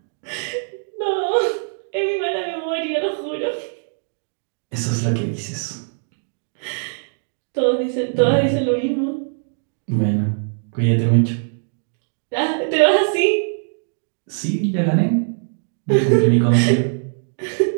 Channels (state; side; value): silent; left; digital silence